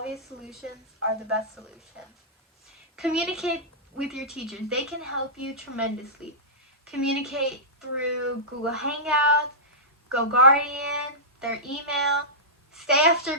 solutions are the best solutions. Communicate with your teachers. They can help you tremendously. Communicate through Google Hangouts, GoGuardian, their email. Stay after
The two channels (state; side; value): normal; both; correlation -0.17